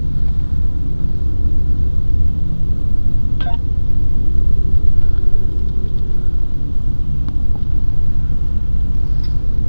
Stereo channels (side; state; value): both; inverted; correlation -1.00